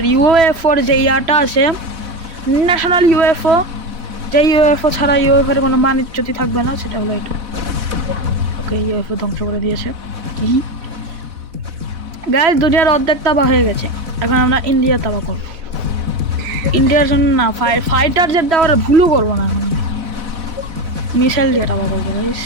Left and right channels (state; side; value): late; left; 4.1 ms